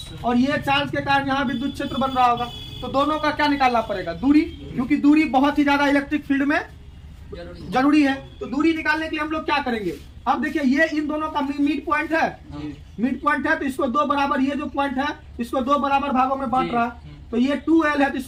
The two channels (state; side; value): identical; both; correlation 1.00